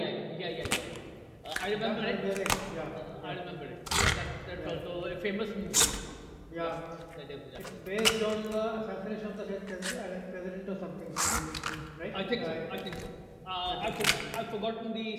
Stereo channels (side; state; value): both; identical; correlation 1.00